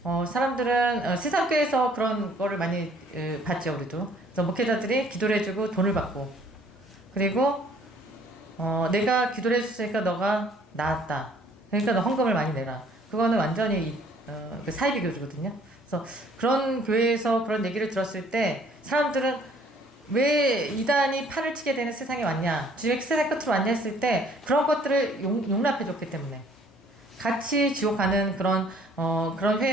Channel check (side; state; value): both; normal; correlation 0.59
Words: 사람들은 세상 교회에서 그런 거를 많이 봤죠. 우리도. 그래서 목회자들이 기도를 해주고 돈을 받고, 그리고 내가 기도를 해줬으니까 너가 나았다, 그러니까 너 헌금을 많이 내라. 그거는 완전히 그 사이비 교주거든요. 그래서 그런 교회에서 그런 얘기를 들었을 때 사람들은 왜 이단이 팔을 치게 되는 세상에 왔냐, 주의 세상 끝으로 왔냐 했을 때 그런 것들을 용납해 줬기 때문에, 같이 지옥 가는 그런